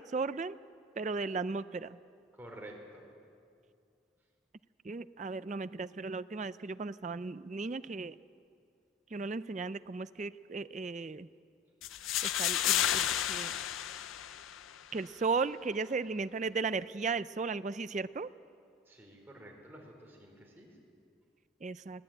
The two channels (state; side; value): normal; both; correlation 0.30